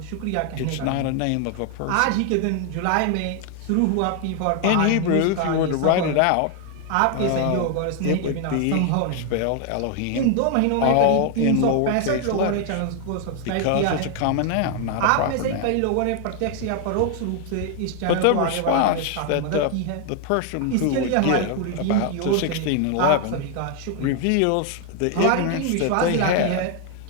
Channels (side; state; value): both; different; correlation 0.00